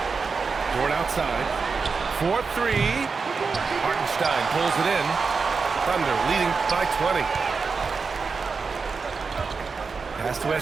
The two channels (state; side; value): quieter; left; 4.9 dB